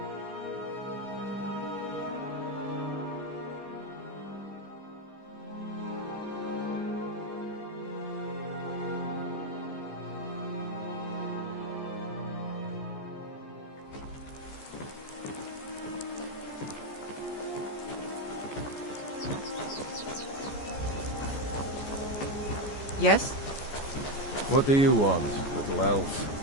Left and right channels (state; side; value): late; right; 14 ms